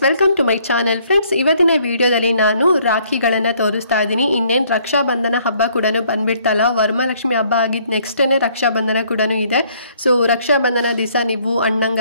welcome to my channel. Friends, ಇವತ್ತಿನ ವಿಡಿಯೋದಲ್ಲಿ ನಾನು ರಾಖಿಗಳನ್ನು ತೋರಿಸ್ತಾ ಇದ್ದೀನಿ. ಇನ್ನೇನು ರಕ್ಷಾಬಂಧನ ಹಬ್ಬ ಕೂಡ ಬಂದ್ಬಿಡ್ತಲ್ಲ, ವರಮಹಾಲಕ್ಷ್ಮಿ ಹಬ್ಬ ಆಗಿದ್ದು ನೆಕ್ಸ್ಟೇ ರಕ್ಷಾಬಂಧನ ಕೂಡ ಇದೆ. ಸೊ ರಕ್ಷಾಬಂಧನ ದಿವಸ ನೀವು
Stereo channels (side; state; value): both; inverted; correlation -0.64